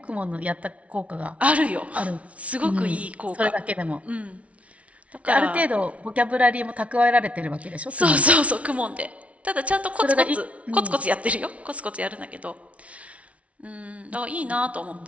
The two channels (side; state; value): left; late; 0.064 ms